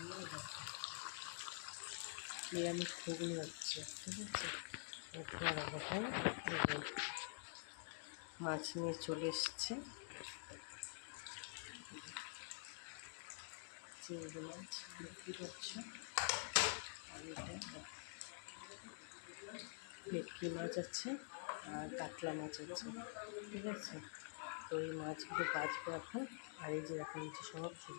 নিরামিষ ঘুগনি হচ্ছে, ঠিক আছে। তোমার এখন মাছ নিয়ে চলে এসছে, চিংড়ি মাছ বিক্রি করছে। আর এটা ভেটকি মাছ আছে আর কাতলা মাছ আছে, ঠিক আছে। তো এই মাছগুলো বাঁচবো এখন। আর এই যে এখন হচ্ছে সব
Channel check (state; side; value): silent; right; digital silence